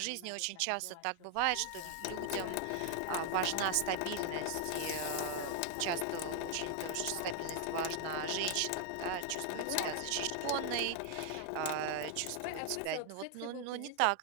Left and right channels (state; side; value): different; both; correlation 0.00